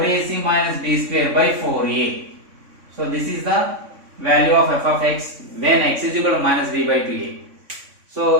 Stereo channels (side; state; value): left; late; 3.6 ms